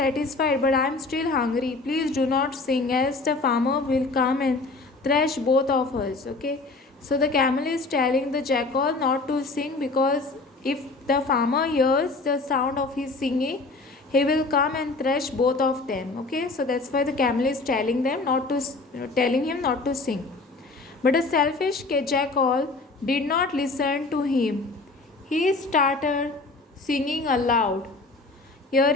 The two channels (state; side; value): quieter; right; 3.5 dB